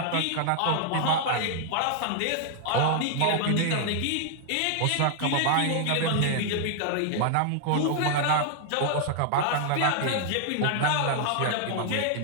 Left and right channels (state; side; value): different; both; correlation 0.00